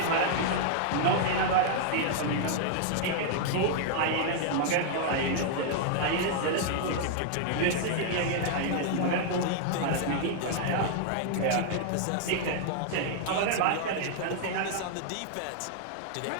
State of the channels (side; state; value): both; different; correlation -0.01